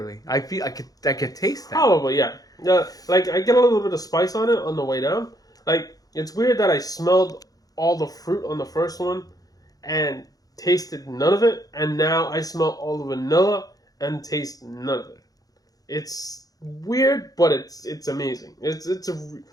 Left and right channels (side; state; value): right; late; 0.18 ms